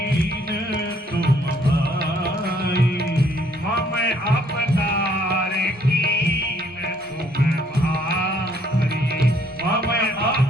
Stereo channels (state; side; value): normal; both; correlation 0.65